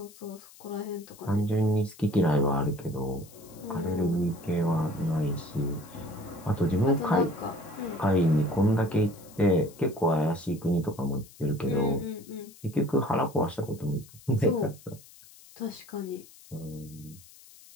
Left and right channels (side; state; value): left; noise; hiss, 22 dB below the sound